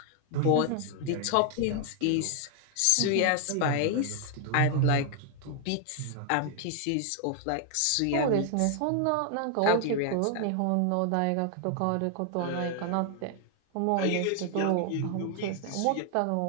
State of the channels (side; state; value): both; different; correlation 0.00